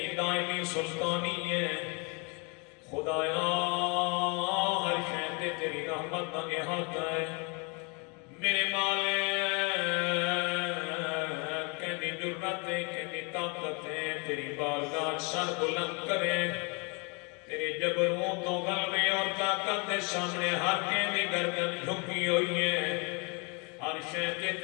دائمی سلطانی ہے خدایا ہر شے تے تیری رحمت دا احاطہ ہے میرے مالک تیری بارگاہ سر بلند کرے تیرے جبروں تو غلبے اور طاقت کے سامنے ہر کے گردن جھکی ہوئی ہے ہر شے تے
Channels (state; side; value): quieter; right; 32.6 dB